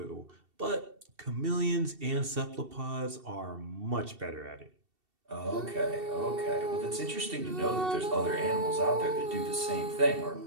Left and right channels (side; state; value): left; late; 2.7 ms